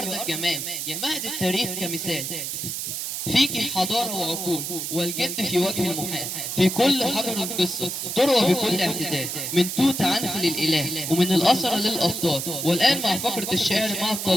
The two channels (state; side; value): noise; right; hiss, 4 dB below the sound